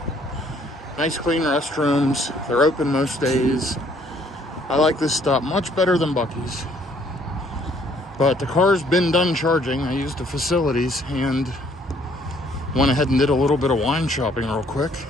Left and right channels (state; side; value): normal; both; correlation 0.63